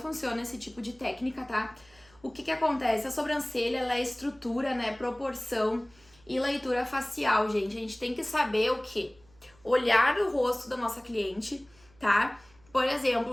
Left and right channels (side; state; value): right; noise; hum, 29 dB below the sound